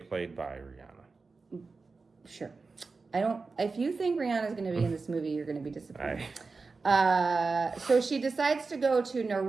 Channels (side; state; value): left; quieter; 4.2 dB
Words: played by Rihanna. Sure. I don't. If you think Rihanna's going to be in this movie, you're going to be disappointed. So she decides to go to